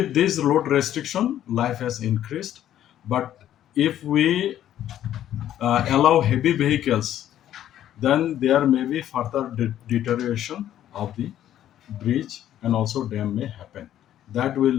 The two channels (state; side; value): quieter; right; 11.6 dB